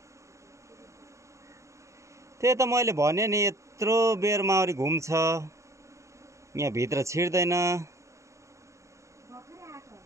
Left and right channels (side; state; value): left; late; 0.14 ms